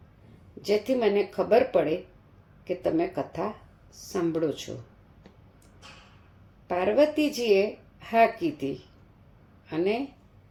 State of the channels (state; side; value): identical; both; correlation 1.00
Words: જેથી મને ખબર પડે કે તમે કથા સાંભળો છો. પાર્વતીજીએ હા કીધી અને